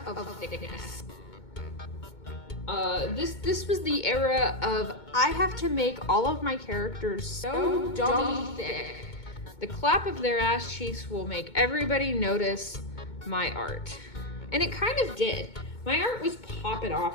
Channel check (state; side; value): late; right; 2.2 ms